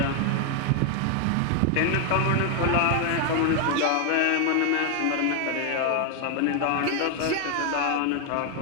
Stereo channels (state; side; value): different; both; correlation 0.01